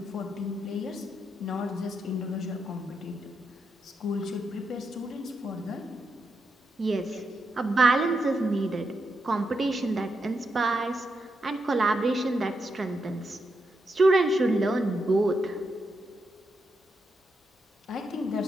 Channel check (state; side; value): normal; both; correlation 0.83